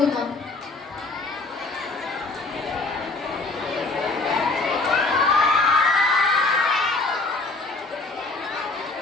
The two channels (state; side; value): quieter; right; 3.4 dB